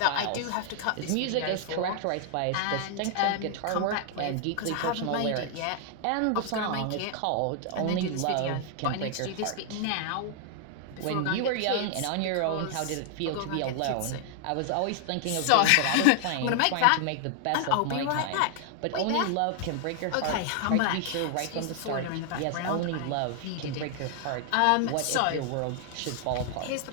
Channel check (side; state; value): both; different; correlation 0.00